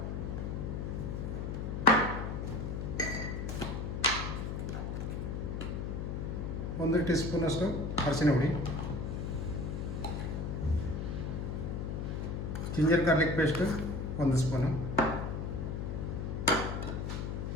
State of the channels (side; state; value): left; noise; hum, 3 dB below the sound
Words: ಒಂದು ಟೀ ಸ್ಪೂನಷ್ಟು ಅರಿಶಿನ ಹುಡಿ, ಜಿಂಜರ್ ಗಾರ್ಲಿಕ್ ಪೇಸ್ಟು 1 ಸ್ಪೂನು.